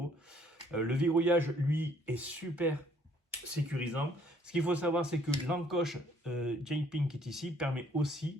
Le verrouillage, lui, est super sécurisant. Ce qu'il faut savoir, c'est que l'encoche J-Ping qui est ici permet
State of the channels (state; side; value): normal; both; correlation 0.62